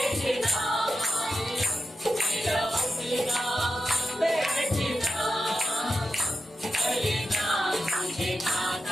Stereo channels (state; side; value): normal; both; correlation 0.90